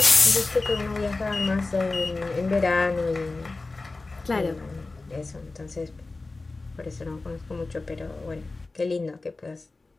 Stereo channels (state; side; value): quieter; right; 3.5 dB